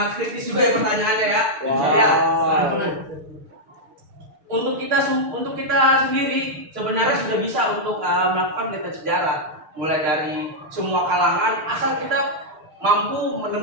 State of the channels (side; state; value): left; late; 6.6 ms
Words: kritis juga ya pertanyaannya ya. Ya. Untuk kita sendiri sebenarnya sudah bisa untuk melakukan penelitian sejarah, mulai dari semua kalangan, asal kita mampu